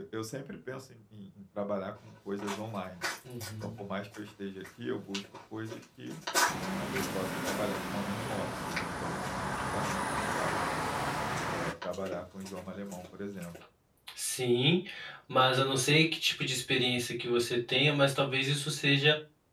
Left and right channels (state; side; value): identical; both; correlation 1.00